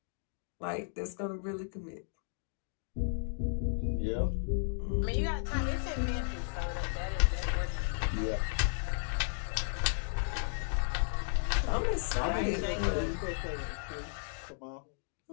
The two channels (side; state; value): right; silent; digital silence